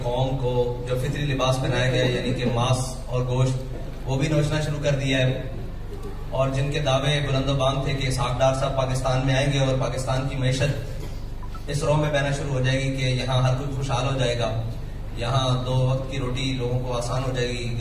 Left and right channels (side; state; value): both; identical; correlation 1.00